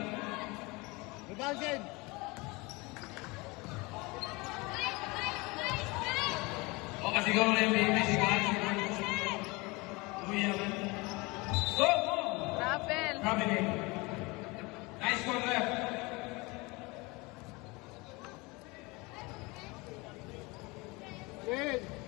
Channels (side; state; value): right; quieter; 25.1 dB